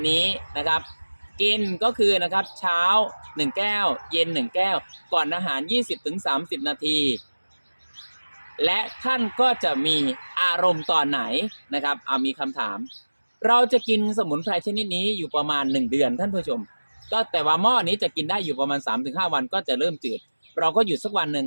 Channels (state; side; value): inverted; both; correlation -1.00